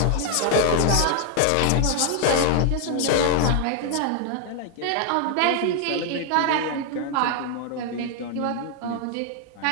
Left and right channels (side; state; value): both; different; correlation 0.00